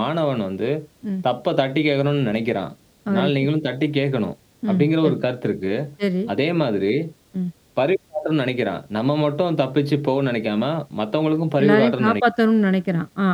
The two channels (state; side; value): identical; both; correlation 1.00